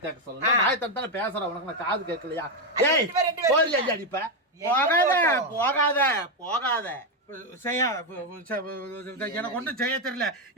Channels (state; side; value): normal; both; correlation 0.05